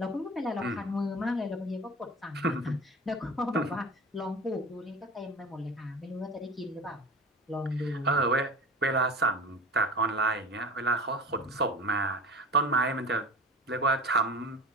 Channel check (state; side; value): normal; both; correlation 0.35